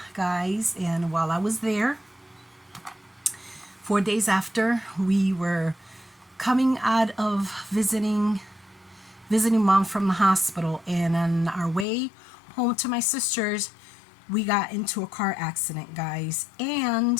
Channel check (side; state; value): right; drops out; at 11.9 s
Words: guys, and while I was there, 4 days after we were coming out of visiting mom from the hospital, and on our way home to my sister's, we got into a car accident, guys,